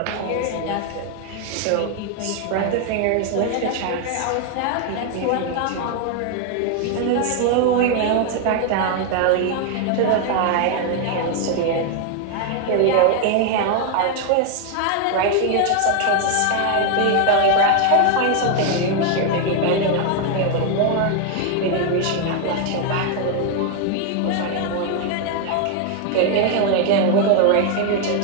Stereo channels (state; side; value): different; both; correlation 0.01